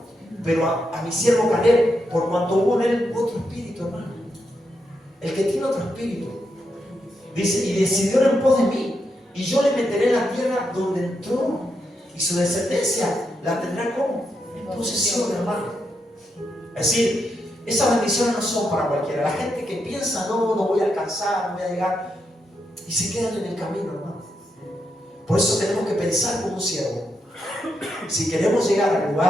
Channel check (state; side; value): normal; both; correlation 0.83